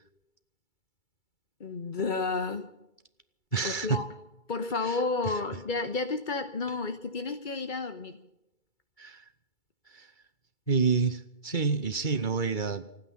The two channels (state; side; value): late; right; 2.3 ms